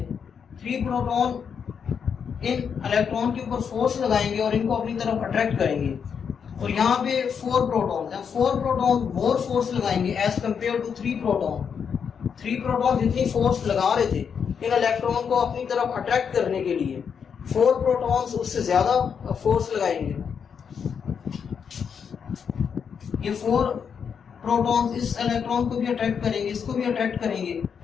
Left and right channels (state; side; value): quieter; right; 6.9 dB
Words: 3 प्रोटॉन इन इलेक्ट्रॉन के ऊपर फोर्स लगाएंगे और इनको अपनी तरफ अट्रैक्ट करेंगे। और यहाँ पे 4 प्रोटॉन हैं, 4 प्रोटॉन मोर फोर्स लगाएंगे as compare to 3 proton. 3 proton जितनी फोर्स लगा रहे थे इन इलेक्ट्रॉन को अपनी तरफ अट्रैक्ट करने के लिए, 4 प्रोटॉन्स उससे ज्यादा फोर्स लगाएंगे। ये 4 प्रोटॉन्स इस इलेक्ट्रॉन को भी अट्रैक्ट करेंगे, इसको भी अट्रैक्ट करेंगे,